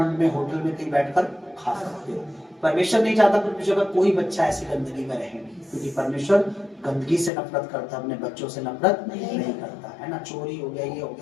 में, होटल में कहीं बैठकर खा सकते हो। परमेश्वर नहीं चाहता परमेश्वर का कोई बच्चा ऐसी गंदगी में रहे, क्योंकि परमेश्वर गंदगी से नफरत करता, अपने बच्चों से नफरत नहीं करता है ना। चोरी हो गया, ये हो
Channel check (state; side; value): drops out; right; at 7.3 s